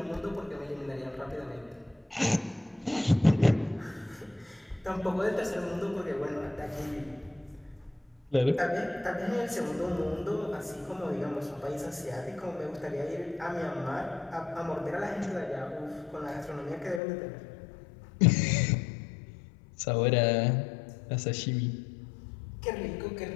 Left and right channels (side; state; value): right; drops out; at 17.0 s